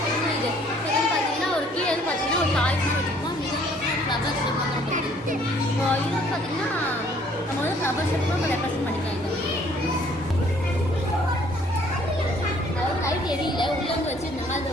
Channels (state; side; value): normal; both; correlation 0.60